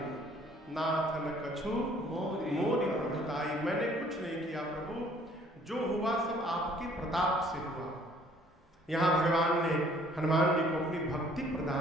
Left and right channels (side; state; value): both; normal; correlation 0.59